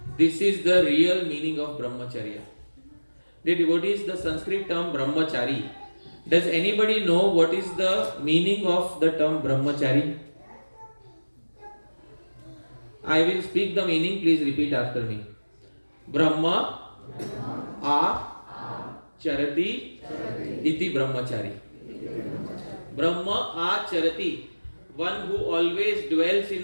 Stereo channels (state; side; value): inverted; both; correlation -1.00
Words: This is the real meaning of brahmacharya. Dear devotees, the Sanskrit term brahmachari. Does anybody know what is the meaning of the term brahmachari? I will speak the meaning, please repeat after me. Brahma a charati iti brahmachari. Brahma a charati, one who always dwells